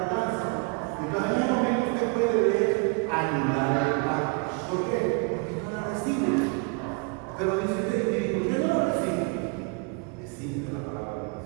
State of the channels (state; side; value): quieter; left; 31.7 dB